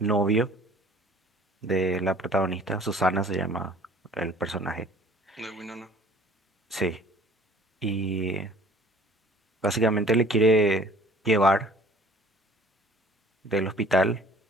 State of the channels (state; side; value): normal; both; correlation 0.51